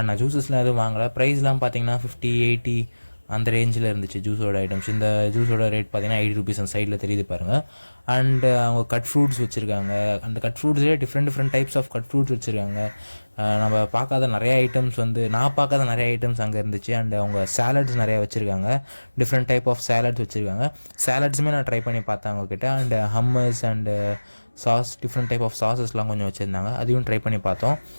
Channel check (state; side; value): inverted; both; correlation -1.00